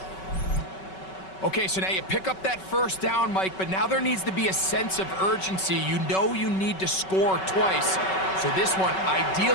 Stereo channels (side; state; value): right; late; 5.3 ms